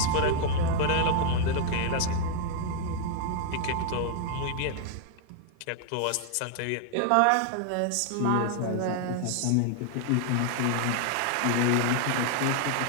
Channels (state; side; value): different; both; correlation 0.00